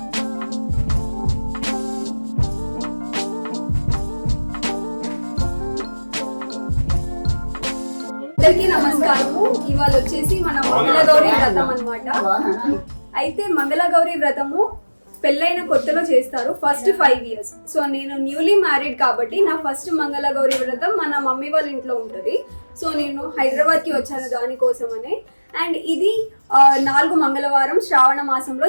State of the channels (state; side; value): inverted; both; correlation -1.00